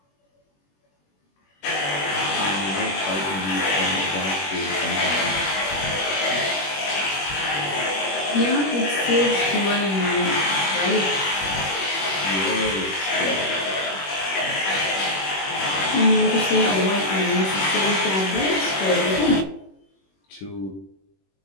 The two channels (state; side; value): late; right; 21 ms